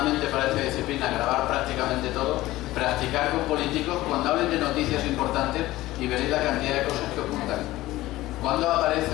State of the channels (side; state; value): right; quieter; 17.0 dB